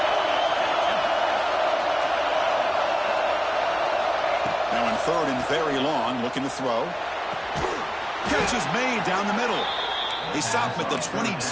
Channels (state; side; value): identical; both; correlation 1.00